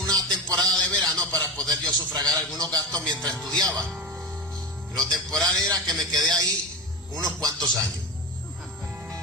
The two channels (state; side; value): normal; both; correlation 0.24